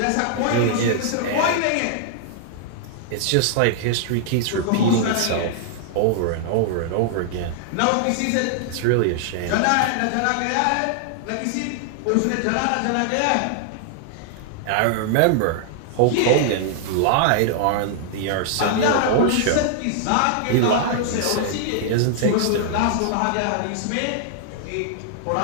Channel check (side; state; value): both; different; correlation -0.01